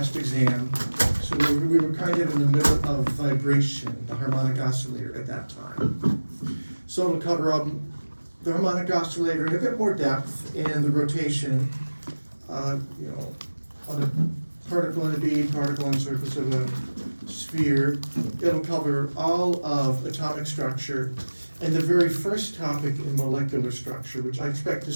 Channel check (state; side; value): inverted; both; correlation -1.00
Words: exam. So we were kind of in the middle of vibration, the harmonic oscillator at that time. So it'll cover the harmonic oscillator in a bit more depth and the rotation, on a particle in a bead, particle on the surface of a sphere. It'll cover all of atomic structure and the very first topic in molecular structure, which I expect to